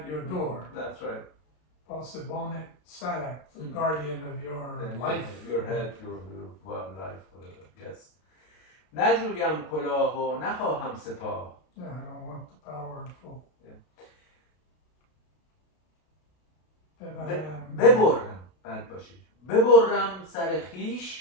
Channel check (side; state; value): right; late; 32 ms